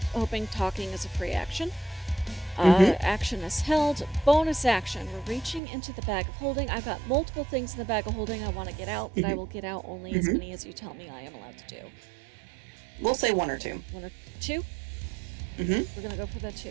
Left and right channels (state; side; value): drops out; left; at 5.6 s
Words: hoping talking is a free action. Action is held. Bonus action. We're reaching into the bag of holding. I've got multiple things in the bag of holding I want to get out, but I will get out only as many as you tell me I am allowed to do. We'll say 1 or 2. 1 or 2? We're going to go for the